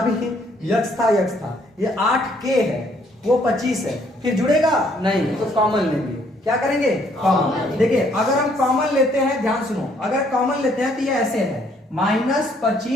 भी यक्स था, यक्स था, ये 8k है, वो 25 है, फिर जुड़ेगा नहीं, तो कॉमन लेंगे। क्या करेंगे, कॉमन। देखिए अगर हम कॉमन लेते हैं, ध्यान सुनो, अगर कॉमन लेते हैं तो ये ऐसे है माइनस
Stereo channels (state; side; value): normal; both; correlation 0.66